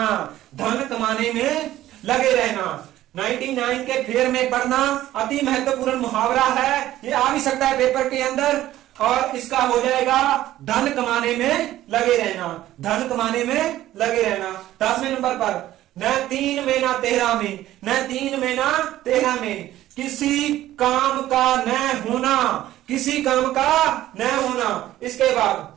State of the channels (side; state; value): left; quieter; 14.1 dB